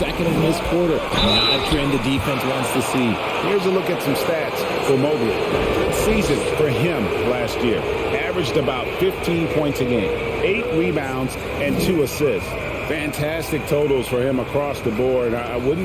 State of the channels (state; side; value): identical; both; correlation 1.00